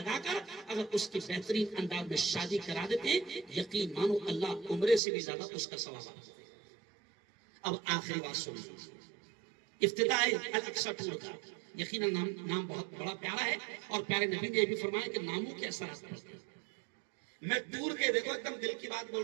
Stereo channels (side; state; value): left; drops out; at 5.0 s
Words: کر اگر اس کی بہترین انداز میں شادی کرا دیتے ہیں, یقین مانو اللہ عمرے سے بھی زیادہ اس کا ثواب آتا ہے. اب آخری بات سنیے, افتتاح الاقصی ٹور کا یقیناً نام بہت بڑا پیارا ہے, اور پیارے نبی نے یہ بھی فرمایا کہ ناموں کے اثرات پڑتے ہیں. میں ٹور کے, دیکھو ایک دم دل کی بات بول